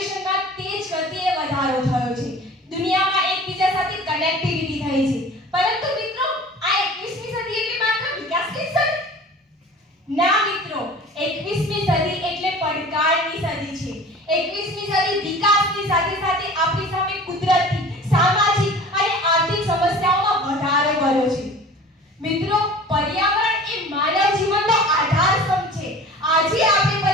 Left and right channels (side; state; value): both; normal; correlation 0.42